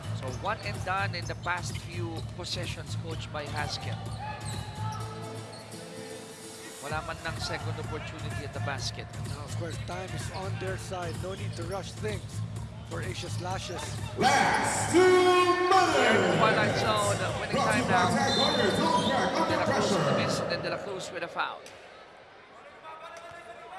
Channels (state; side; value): identical; both; correlation 1.00